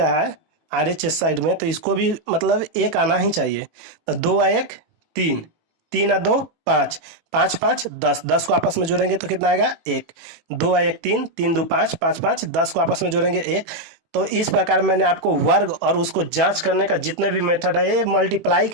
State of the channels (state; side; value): late; left; 18 ms